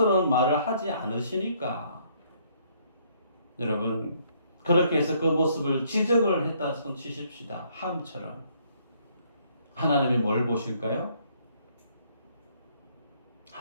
말을 하지 않으시니까. 여러분, 그렇게 해서 그 모습을 지적을 했다 손 치십시다. 함처럼. 하나님이 뭘 보실까요?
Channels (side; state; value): both; inverted; correlation -0.66